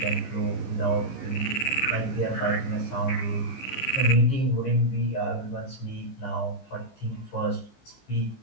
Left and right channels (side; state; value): right; late; 15 ms